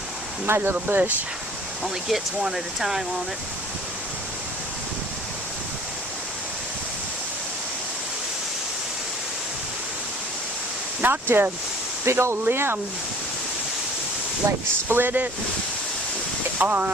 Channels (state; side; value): normal; both; correlation 0.50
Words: My little bush only gets one at a time on it. Knocked a big old limb, like split it